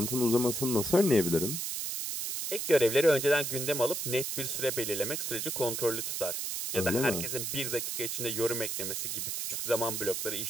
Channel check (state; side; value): noise; right; hiss, 3 dB below the sound